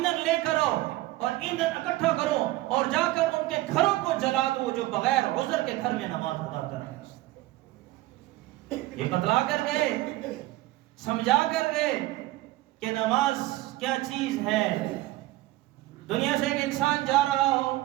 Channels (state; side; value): quieter; left; 17.6 dB